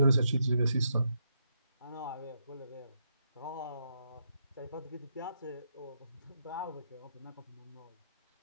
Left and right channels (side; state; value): both; inverted; correlation -0.79